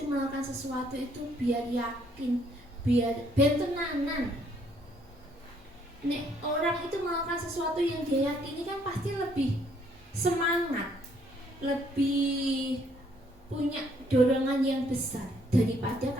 melakukan sesuatu itu biar yakin, biar tenanan. Nek orang itu melakukan sesuatu yang dia yakini kan pasti lebih semangat, lebih punya dorongan yang besar daripada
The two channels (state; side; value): normal; both; correlation 0.67